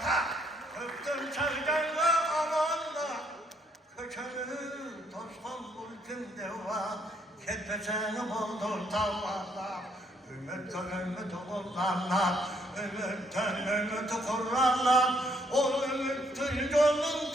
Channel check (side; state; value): both; normal; correlation 0.70